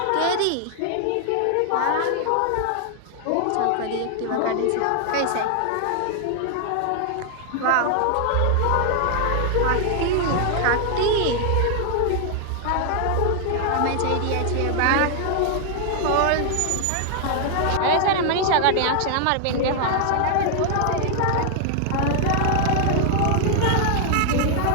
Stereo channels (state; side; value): different; both; correlation 0.00